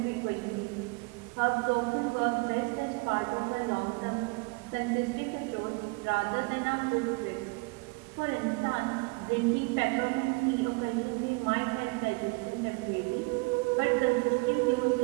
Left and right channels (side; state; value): left; quieter; 28.8 dB